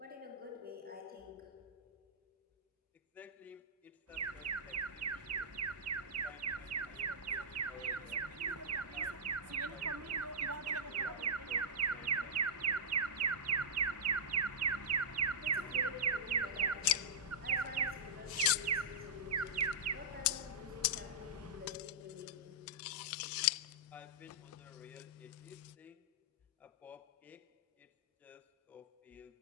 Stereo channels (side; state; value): both; normal; correlation -0.12